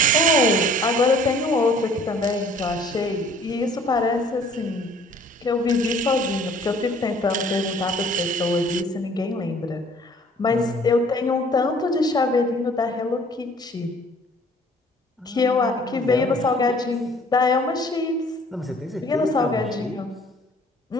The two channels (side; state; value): both; normal; correlation 0.54